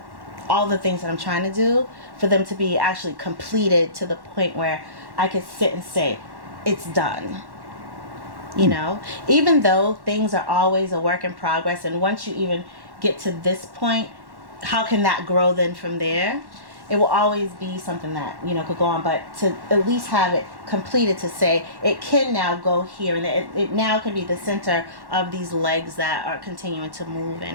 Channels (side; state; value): left; late; 1.1 ms